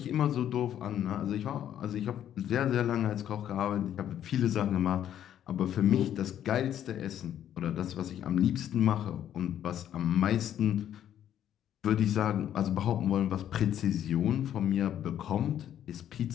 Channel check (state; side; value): quieter; right; 10.6 dB